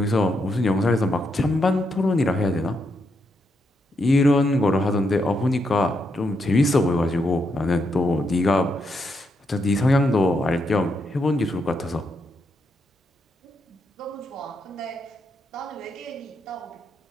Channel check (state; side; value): normal; both; correlation 0.80